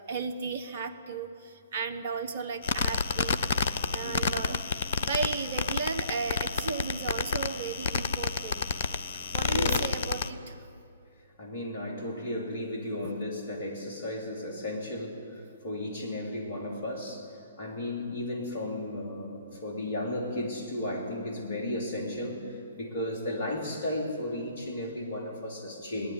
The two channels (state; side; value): inverted; both; correlation -0.60